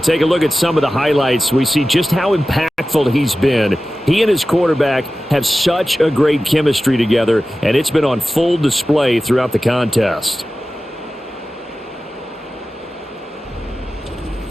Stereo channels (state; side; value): normal; both; correlation 0.95